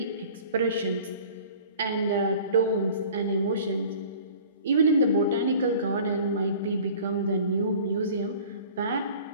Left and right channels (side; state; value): both; inverted; correlation -0.46